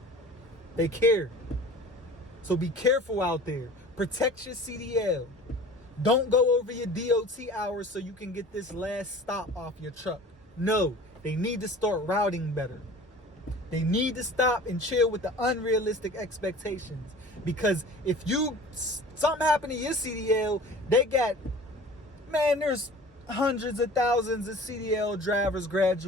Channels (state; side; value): normal; both; correlation 0.43